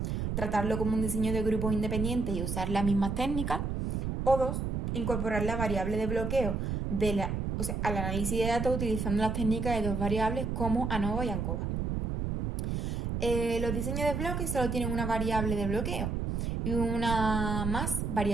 Tratarlo como un diseño de grupos independientes y usar las mismas técnicas. O 2. Incorporar la variable de bloqueo al análisis de datos utilizando las técnicas de dos variables como ANOVA y ANCOVA. Los diseños de bloques solo tienen una variable de bloqueo y una más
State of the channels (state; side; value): noise; right; rumble, 2 dB below the sound